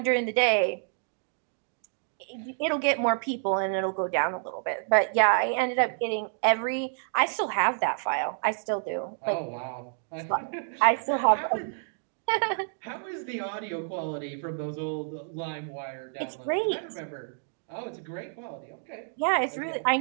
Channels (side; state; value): left; silent; digital silence